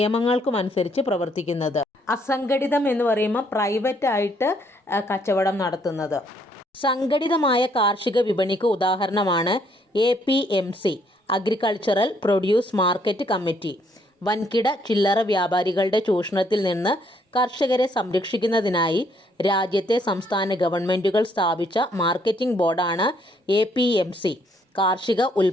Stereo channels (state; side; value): normal; both; correlation 0.69